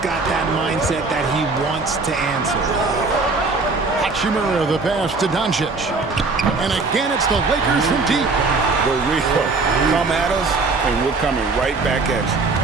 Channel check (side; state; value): left; quieter; 3.9 dB